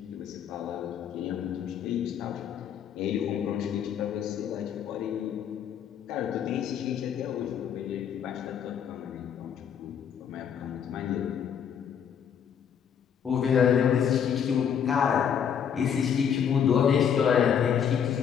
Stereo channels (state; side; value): quieter; right; 8.2 dB